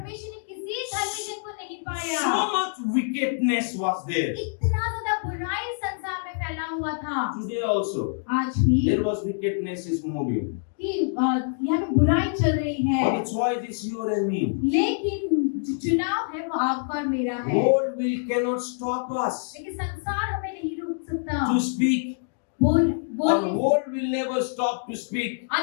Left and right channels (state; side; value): silent; right; digital silence